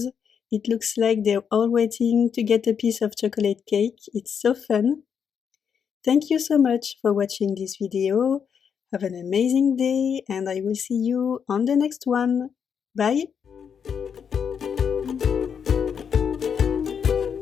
It looks like they're all waiting to get a piece of chocolate cake. It's so fun. Thank you so much for watching this video. Have an amazing day, and I will see you on the next one. Bye!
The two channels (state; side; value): quieter; right; 7.2 dB